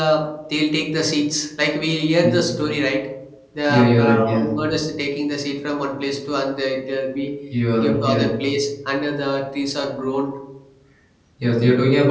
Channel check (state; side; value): identical; both; correlation 1.00